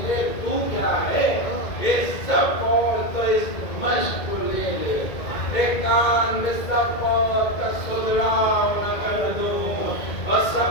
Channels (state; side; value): late; right; 2.2 ms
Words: لے، تو کیا ہے یہ سب اور تو اس مشق کو لے لے، ایک کان میں سب اور کا سدراؤ نہ کر دوں، اور